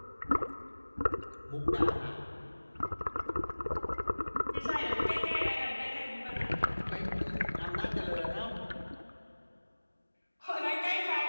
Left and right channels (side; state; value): both; inverted; correlation -1.00